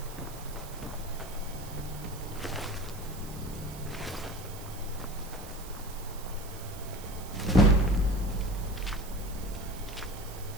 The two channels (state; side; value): noise; right; hiss, 15 dB below the sound